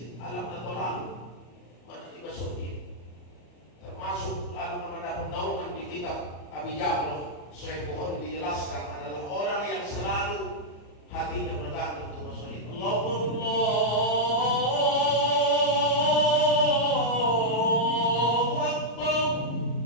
Alam na tolalu. Mana dimasukin. Termasuk lalu mendapat naungan di kitab Abi Jabal. Sahih Bukhari dijelaskan adalah orang yang selalu hatinya menegakkan untuk masuk. Allah.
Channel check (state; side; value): late; right; 34 ms